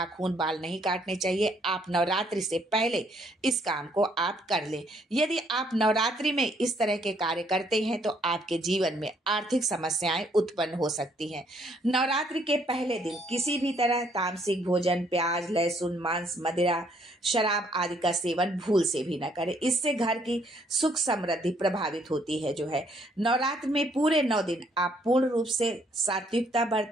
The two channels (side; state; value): both; normal; correlation 0.67